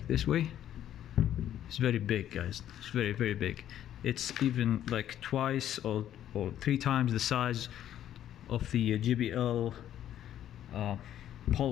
this way. It's very big, guys. It's very big. It's even like twice or 3 times the size of the JBL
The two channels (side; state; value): right; quieter; 11.2 dB